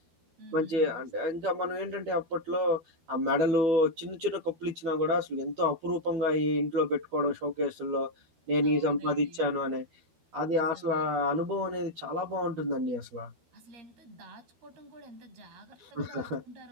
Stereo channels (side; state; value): left; late; 13 ms